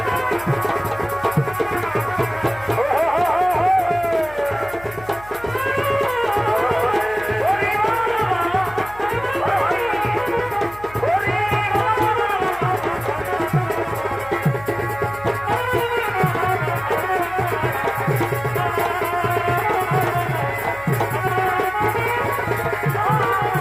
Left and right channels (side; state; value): left; noise; hum, 20 dB below the sound